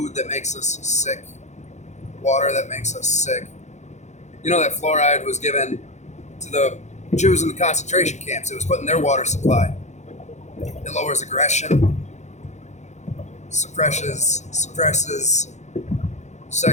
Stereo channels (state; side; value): late; right; 0.33 ms